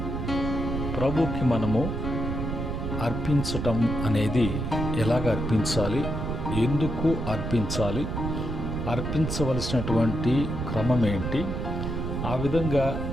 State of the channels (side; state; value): right; noise; rumble, 3 dB below the sound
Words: ప్రభుకి మనము అర్పించటం అనేది ఎలాగ అర్పించాలి, ఎందుకు అర్పించాలి, అర్పించవలసినటువంటి క్రమం ఏంటి, ఆ విధంగా